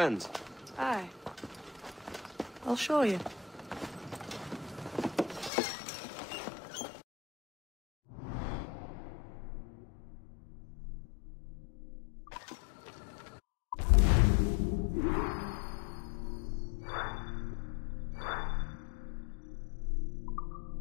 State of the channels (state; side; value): drops out; right; at 5.5 s